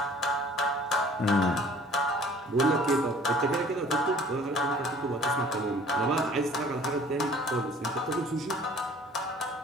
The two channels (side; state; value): both; normal; correlation 0.52